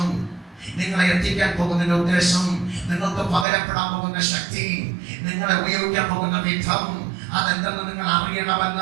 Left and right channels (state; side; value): drops out; left; at 3.5 s